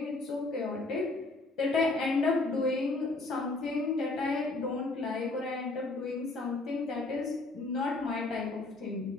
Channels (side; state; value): right; quieter; 3.2 dB